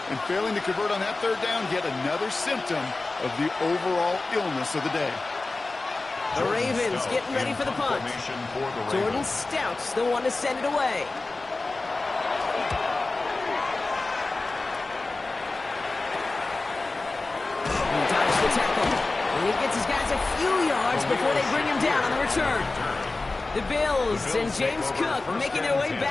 And failing to convert on that 3rd down, yet another symptom of the overall illness of the day. The Ravens getting ready for the punt. Jordan Stout's the one to send it away. He dodged the tackle. And he gets his guys a few yards before they bring him down on the return. The Bills and James Cook making their way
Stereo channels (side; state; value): right; quieter; 3.3 dB